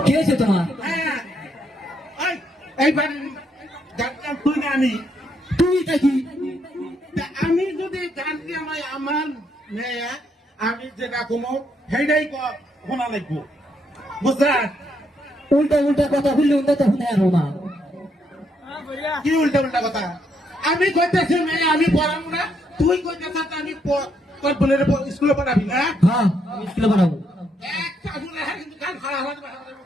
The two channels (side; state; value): both; normal; correlation 0.75